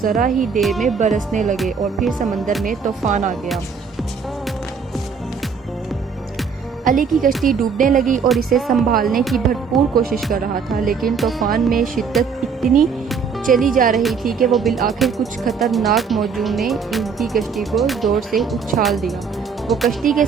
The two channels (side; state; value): left; quieter; 5.8 dB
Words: ذرا ہی دیر میں برسنے لگے اور پھر سمندر میں طوفان آ گیا۔ علی کی کشتی ڈوبنے لگی اور اسے سنبھالنے کی بھرپور کوشش کر رہا تھا، لیکن طوفان میں شدت اتنی چلی جا رہی تھی کہ وہ بالآخر کچھ خطرناک موجوں نے ان کی کشتی کو زور سے اچھال دیا۔ وہ کشتی کے